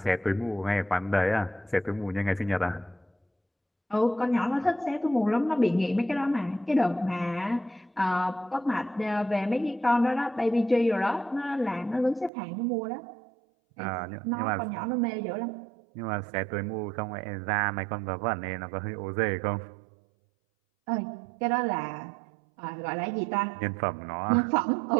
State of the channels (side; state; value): left; drops out; at 12.3 s